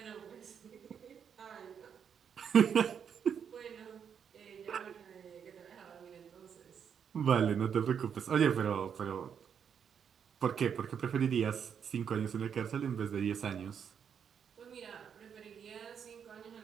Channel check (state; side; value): quieter; left; 7.6 dB